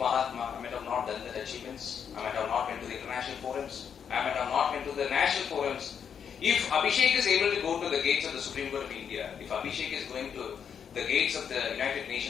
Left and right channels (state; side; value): quieter; right; 7.5 dB